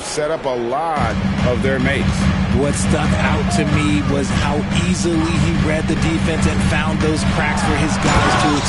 set up a lot of their mates. What stuck out to me was how easily he read the defense and found those cracks for his guys to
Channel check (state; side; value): identical; both; correlation 1.00